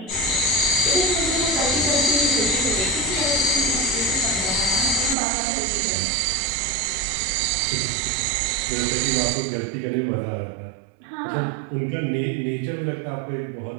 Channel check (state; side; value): drops out; left; at 5.2 s